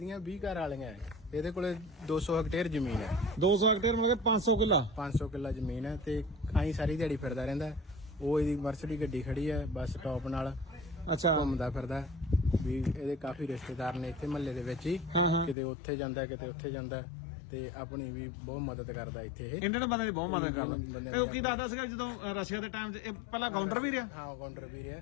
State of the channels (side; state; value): right; drops out; at 15.6 s